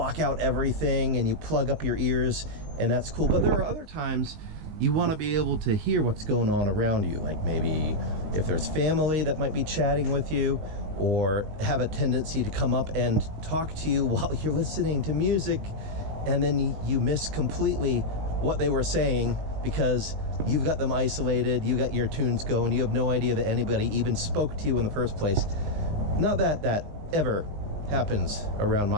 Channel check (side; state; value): left; late; 19 ms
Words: out everything, and you plug up your ears, and that's cool. But there are other times you want to be able to hear what's going on around you, like maybe if there's family that might be chatting with you, or have a tendency to come up and talk to you while you're listening to music, and then you miss completely what they were saying because you've got them isolated, you got your tunes going, you have no idea that anybody even spoke to you in the first place. Not that that ever happens around